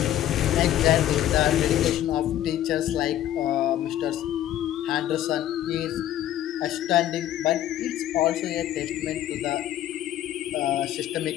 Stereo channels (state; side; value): quieter; right; 12.3 dB